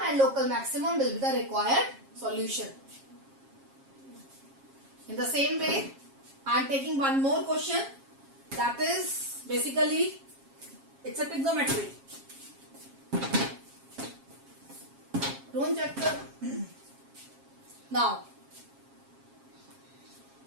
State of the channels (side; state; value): left; late; 7.4 ms